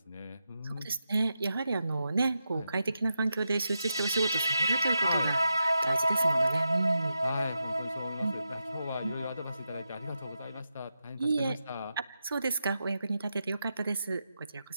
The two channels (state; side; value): inverted; both; correlation -0.88